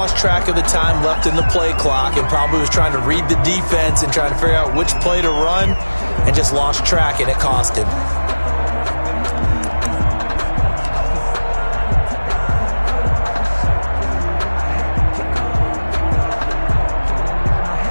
track of the time left in the play clock and probably was trying to read the defense and trying to figure out which play to run and just lost track, and it cost him.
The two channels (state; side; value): inverted; both; correlation -1.00